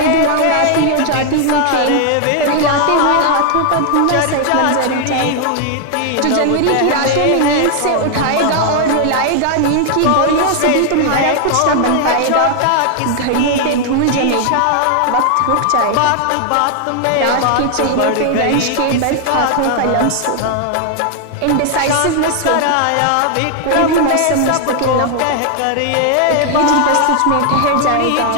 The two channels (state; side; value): different; both; correlation 0.00